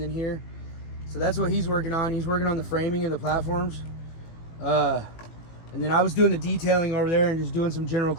here. So that's what he's working on. He's working on the framing of the platforms. And then I was doing the detailing over there and just doing some general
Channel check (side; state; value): right; late; 18 ms